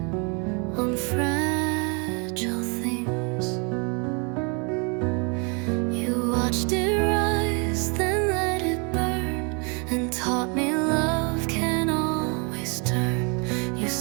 on fragile themes. You watched it rise, then let it burn, and taught me love can always turn. You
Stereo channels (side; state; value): left; quieter; 33.8 dB